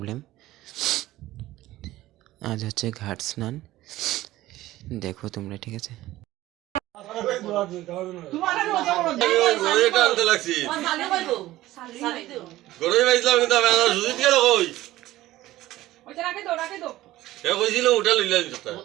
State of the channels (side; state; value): left; quieter; 16.1 dB